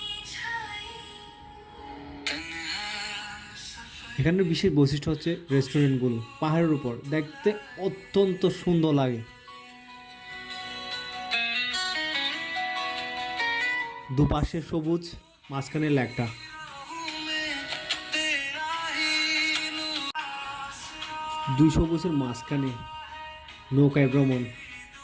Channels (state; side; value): identical; both; correlation 1.00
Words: এখানের বিশেষ বৈশিষ্ট্য হচ্ছে রেস্টুরেন্টগুলো পাহাড়ের উপর, দেখতে অত্যন্ত সুন্দর লাগে। দুপাশে সবুজ, মাঝখানে লেকটা। দুই সবুজের মাঝখানে নৌকায় ভ্রমণ